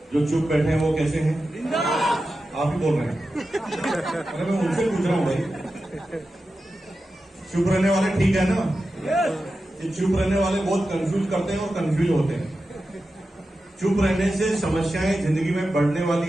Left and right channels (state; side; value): normal; both; correlation 0.92